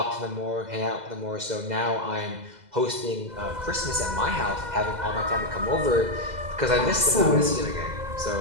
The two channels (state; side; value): late; left; 2.0 ms